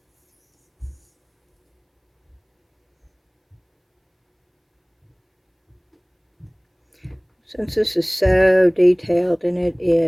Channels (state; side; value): identical; both; correlation 1.00